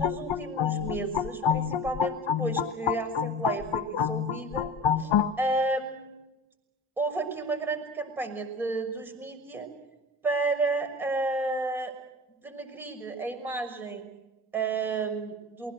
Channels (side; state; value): both; normal; correlation 0.35